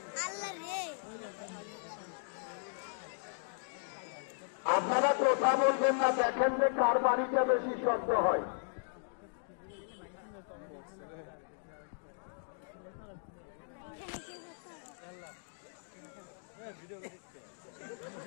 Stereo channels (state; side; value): silent; right; digital silence